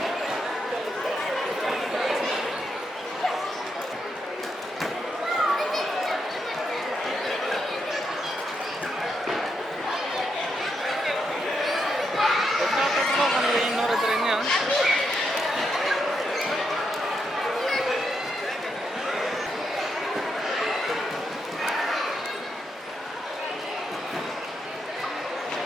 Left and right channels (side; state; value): both; normal; correlation 0.81